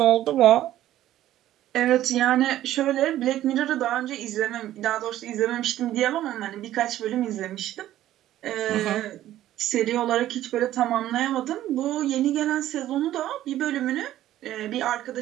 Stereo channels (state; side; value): quieter; left; 13.3 dB